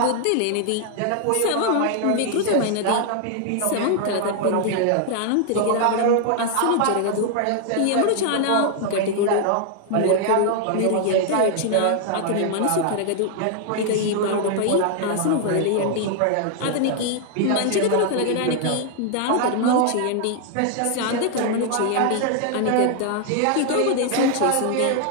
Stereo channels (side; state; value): both; different; correlation 0.00